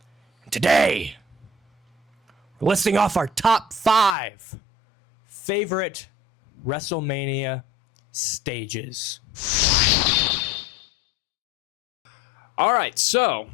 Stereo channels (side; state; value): right; drops out; at 4.2 s